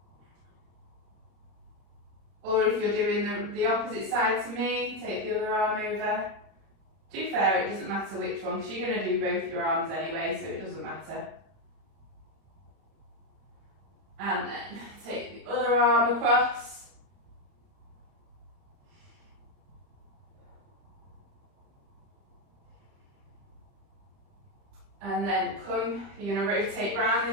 Or if you're doing the opposite side to me, take the other arm over. To be fair, it doesn't matter which one, because you're going to do both your arms anyway, so it doesn't matter. And then take the other arm across. And then you're going to rotate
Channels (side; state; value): left; late; 31 ms